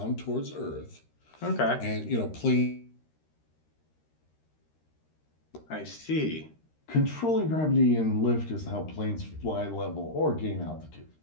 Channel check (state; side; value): late; right; 13 ms